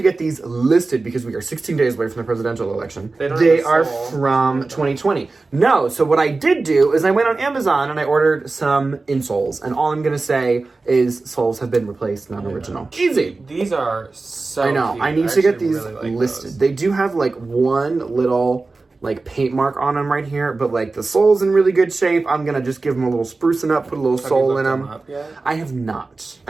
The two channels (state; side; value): quieter; left; 3.6 dB